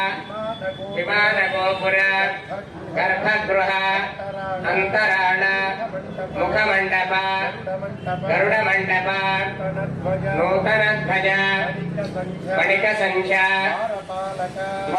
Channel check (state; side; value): identical; both; correlation 1.00